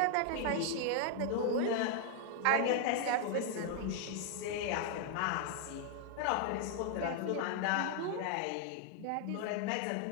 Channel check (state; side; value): different; both; correlation 0.00